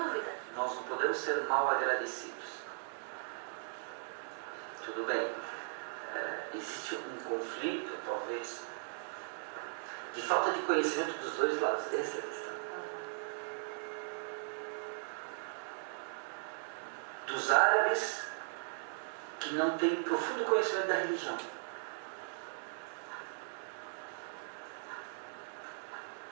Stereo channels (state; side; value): silent; left; 52 dB below the other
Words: Nós não podemos ser mal agradecidos. Tudo bem, existe um conflito, talvez, de falta de conhecimento dos dois lados. Essa é a questão. Dos árabes que não têm profundo conhecimento da religião.